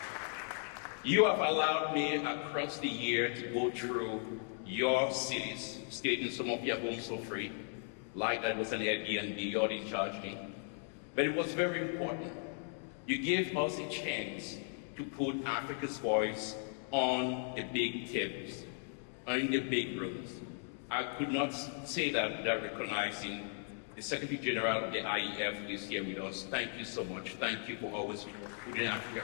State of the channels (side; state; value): right; silent; 53 dB below the other